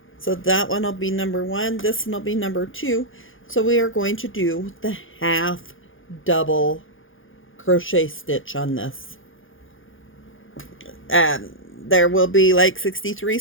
so that one will be number 1. This one will be number 2. So we are going to do the half double crochet stitch on this. There will be like 63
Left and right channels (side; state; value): right; late; 0.58 ms